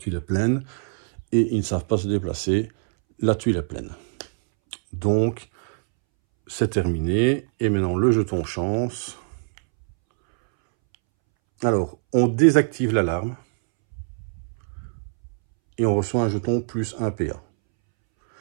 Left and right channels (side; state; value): left; silent; 63 dB below the other